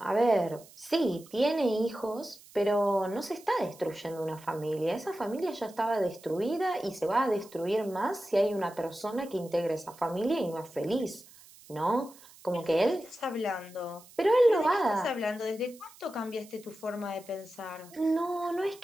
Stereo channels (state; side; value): noise; right; hiss, 22 dB below the sound